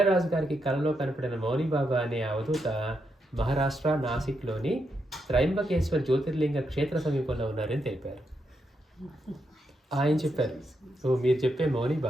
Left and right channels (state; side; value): normal; both; correlation 0.82